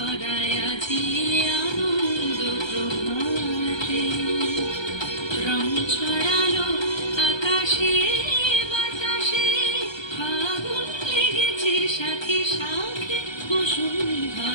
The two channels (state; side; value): late; right; 1.3 ms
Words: আজি আনন্দ প্রভাতে রং ছড়ালো আকাশে বাতাসে ফাগুন লেগেছে সাথে সাথে